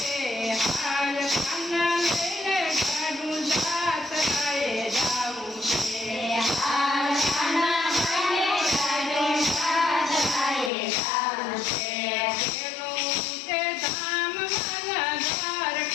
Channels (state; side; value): drops out; right; at 10.7 s